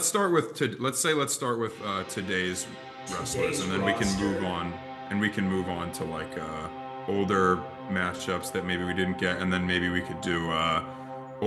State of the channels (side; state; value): both; identical; correlation 1.00